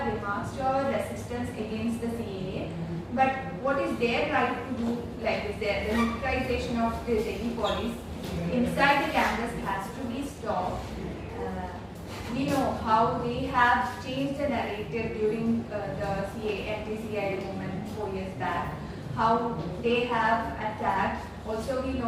remarks, show our resistance against the CAA. But what is their right to do like this? The militarization of the Delhi police inside the campus has to be stopped. We know how they have changed the narrative during the anti-CAA movement 4 years back, how they have attacked. Also, we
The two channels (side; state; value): both; identical; correlation 1.00